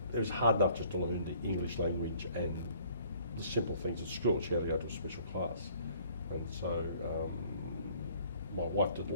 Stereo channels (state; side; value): inverted; both; correlation -0.58